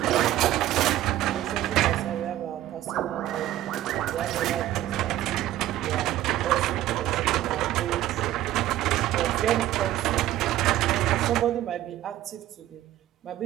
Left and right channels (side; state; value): left; quieter; 13.8 dB